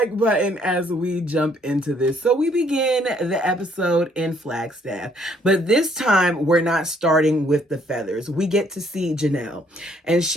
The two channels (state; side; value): normal; both; correlation 0.66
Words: button as we jump into this. So we begin the episode in Flagstaff, but this time we're not starting with the feathers. We get to see Janelle, and